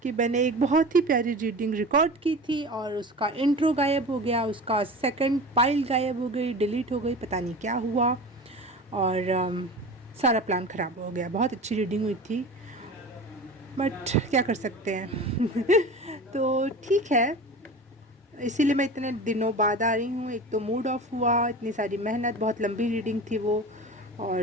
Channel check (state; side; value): normal; both; correlation 0.34